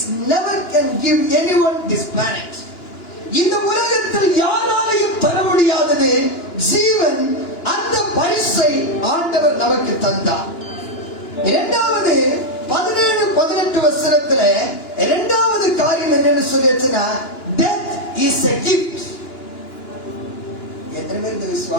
never can give anyone this planet. இந்த உலகத்தில் யாராலையும் தர முடியாதது ஜீவன். அந்த பரிசை ஆண்டவர் நமக்கு தந்தார். இரண்டாவது 17-18 வசனத்துல இரண்டாவது காரியம் என்னன்னு சொல்லிச்சுன்னா, death is a gift. எத்தனை பேர் இதை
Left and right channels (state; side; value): late; right; 2.9 ms